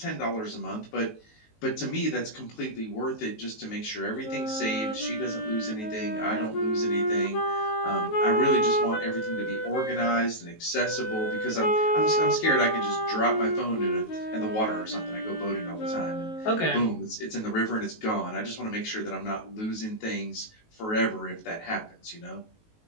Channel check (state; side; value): late; right; 19 ms